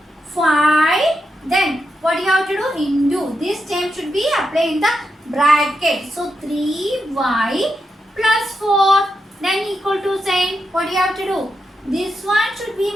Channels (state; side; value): normal; both; correlation 0.85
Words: 5. Then what you have to do? Into. This term should be applied in the bracket. So 3y plus 4. Then equal to sign. What you have to do? This one should be